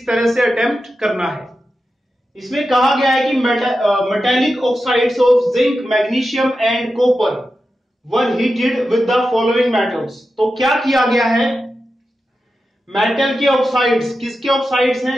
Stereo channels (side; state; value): both; normal; correlation 0.91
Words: तरह से अटेम्प्ट करना है। इसमें कहा गया है कि metallic oxides of zinc, magnesium and copper were heated with the following metals. तो क्या किया गया है, मेटल के ऑक्साइड्स, किसके ऑक्साइड्स